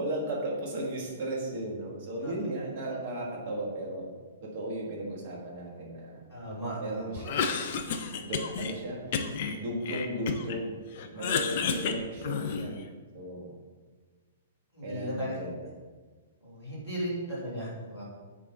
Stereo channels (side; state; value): both; inverted; correlation -0.44